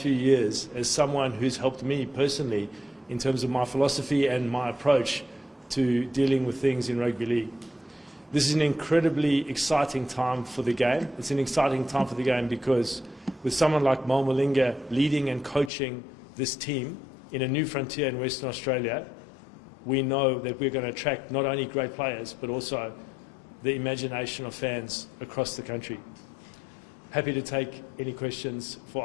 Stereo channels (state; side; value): drops out; right; at 15.7 s